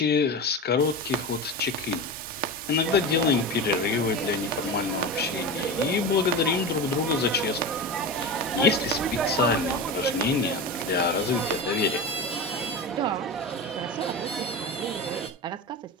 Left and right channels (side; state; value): both; normal; correlation 0.24